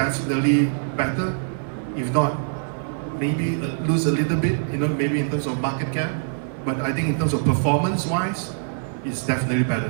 better. If not, maybe lose a little bit, you know, maybe in terms of market cap. But I think in terms of performance-wise, it's definitely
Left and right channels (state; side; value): silent; left; 63 dB below the other